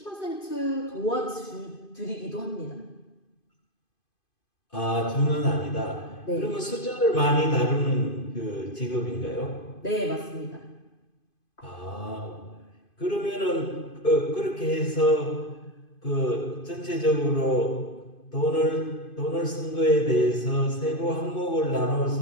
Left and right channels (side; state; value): right; late; 2.5 ms